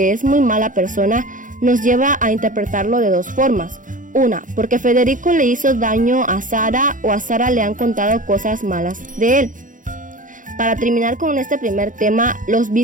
es muy mala persona nos lleva a interpretarlo de dos formas. Una, porque Federico le hizo daño a Sara o a Sara le han contado cosas malas de él. Para terminar con este primer tema, los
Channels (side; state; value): left; late; 0.38 ms